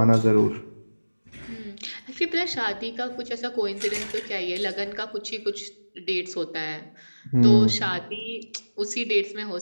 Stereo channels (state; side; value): inverted; both; correlation -1.00